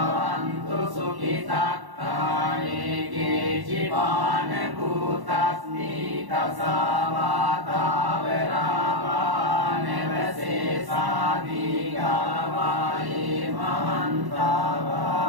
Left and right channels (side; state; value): left; late; 1.1 ms